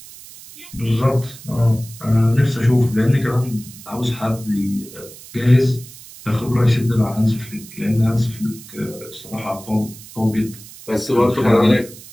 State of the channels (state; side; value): noise; right; hiss, 18 dB below the sound